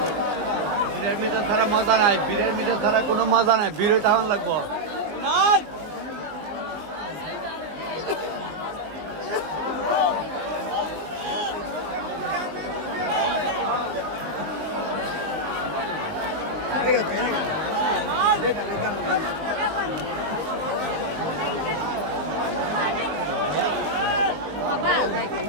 বীরের মিটার ছাড়া মজা নাই, বীরের মিটার ছাড়া কোনো মজা নাই। বীর তখন লাগবো।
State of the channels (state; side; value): late; left; 20 ms